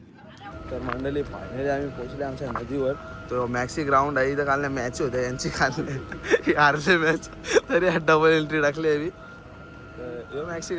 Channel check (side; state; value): both; identical; correlation 1.00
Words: तर मंडळी फायनली आम्ही पोहोचले आमच्या नदीवर. तो मॅक्सी ग्राउंड आहे इथं. काल मॅच होत्या यांची काल हारले मॅच तरी डबल एंट्री टाकली आहे. तर यो मॅक्सी